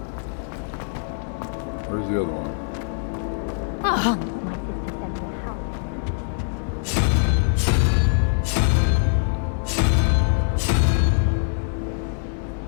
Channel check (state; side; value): silent; right; digital silence